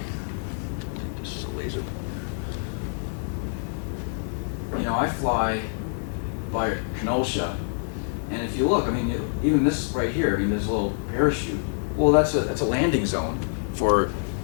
this is a laser pointer. I fly by Kenosha, and if you look, even this right here, this little parachute, well, that's a landing zone for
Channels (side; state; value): right; silent; digital silence